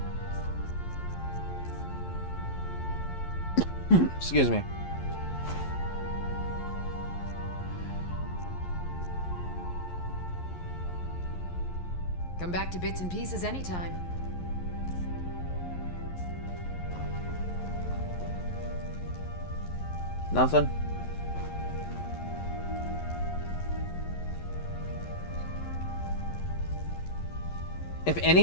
Excuse me. Come back to bits and pieces anytime. Nothing? If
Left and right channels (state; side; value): late; right; 11 ms